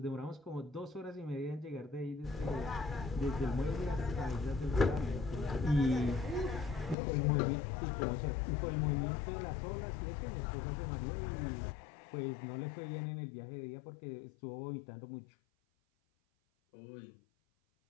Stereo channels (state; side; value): drops out; right; at 7.0 s